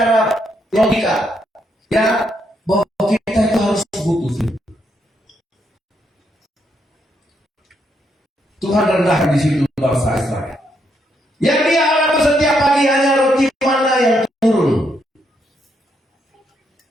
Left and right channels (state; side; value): normal; both; correlation 0.77